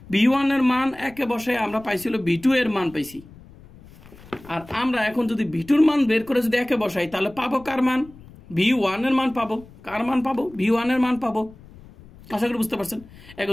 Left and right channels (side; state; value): left; noise; rumble, 22 dB below the sound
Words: B1 এর মান একে বসায় আমরা পাইছিল B2 এর মান পাইছি। আর আমরা এখন যদি B2 এর মান বের করে যদি একে বসাই, তাহলে পাবো কার মান? B1 এর মান পাবো। কার মান পাবো? B1 এর মান পাবো। আশা করি বুঝতে পারছেন।